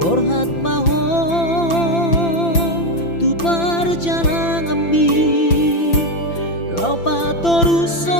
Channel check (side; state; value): right; late; 5.9 ms